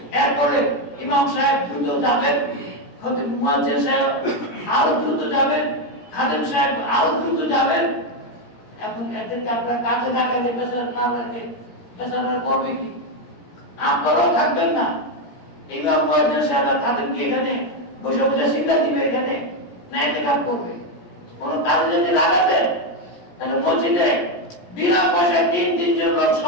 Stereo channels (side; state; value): right; late; 17 ms